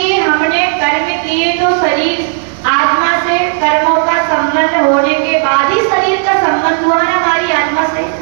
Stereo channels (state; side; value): silent; left; digital silence